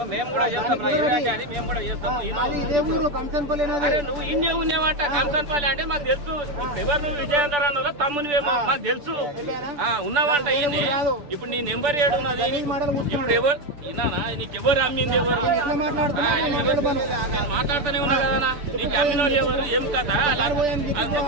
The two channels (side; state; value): left; late; 6.9 ms